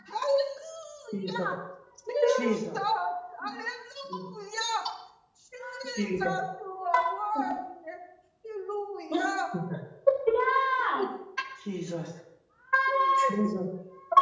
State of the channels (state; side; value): identical; both; correlation 1.00